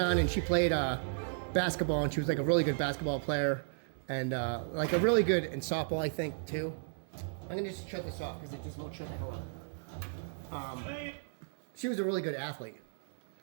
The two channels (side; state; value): left; silent; digital silence